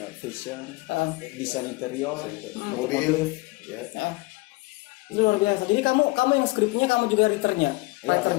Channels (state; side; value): quieter; right; 23.7 dB